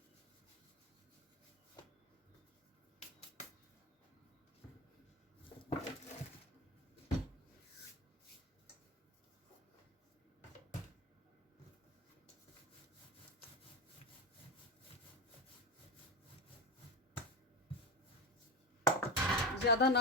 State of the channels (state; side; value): normal; both; correlation 0.18